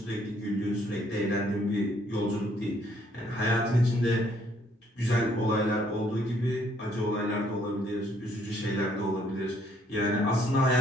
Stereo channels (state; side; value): normal; both; correlation 0.66